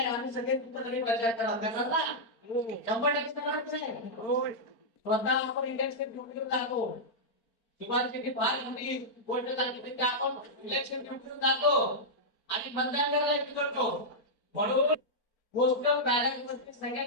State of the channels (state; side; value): late; right; 4.4 ms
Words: आम्ही सगळे प्रचार करा. 100% स्वतः आपण इलेक्शन ड्युटीवर जातो. शिवाजी फार मोठी गोष्ट सांगितली की आपण इलेक्शन ड्युटीवर जातो आणि मतदान करायला करतो. म्हणून गोष्ट बॅलन्स वरती